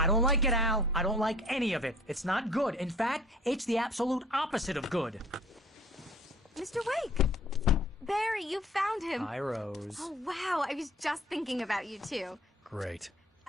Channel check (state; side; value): normal; both; correlation 0.51